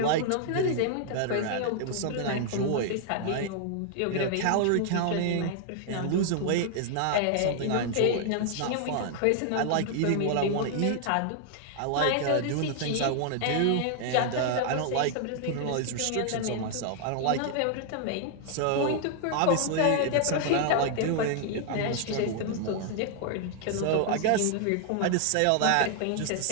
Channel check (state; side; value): different; both; correlation 0.00